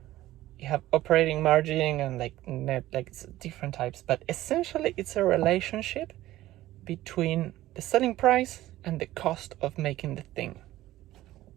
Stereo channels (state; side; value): quieter; left; 15.4 dB